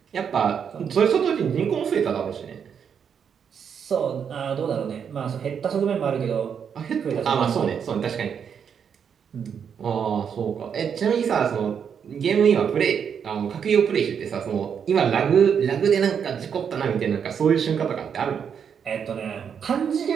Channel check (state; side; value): quieter; left; 7.4 dB